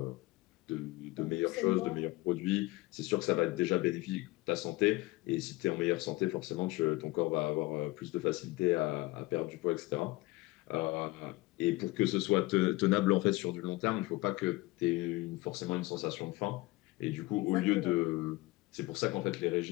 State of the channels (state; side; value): quieter; right; 20.5 dB